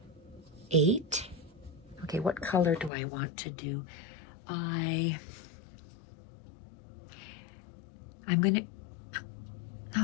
8. Okay, what color do I want to do? I'm gonna,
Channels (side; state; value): right; drops out; at 2.9 s